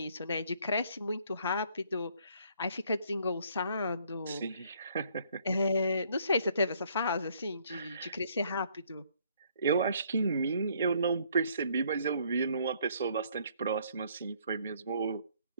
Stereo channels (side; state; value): both; inverted; correlation -0.64